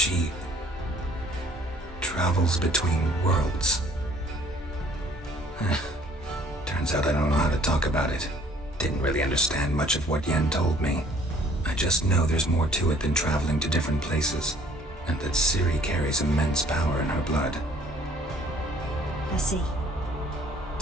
travels between worlds. Turns out I don't know how to talk about it. Didn't really understand much of what Yen told me. I just know there's more to it than traveling to different places, and that Ciri carries immense power in her blood. I see.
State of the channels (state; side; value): normal; both; correlation 0.57